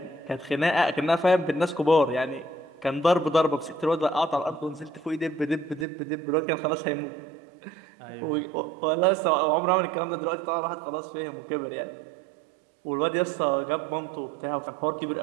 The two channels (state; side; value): drops out; left; at 5.9 s